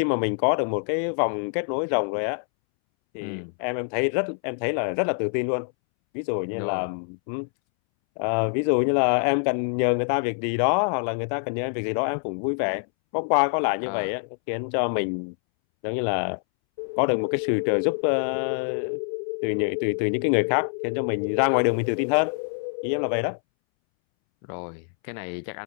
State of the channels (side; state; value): right; silent; 62 dB below the other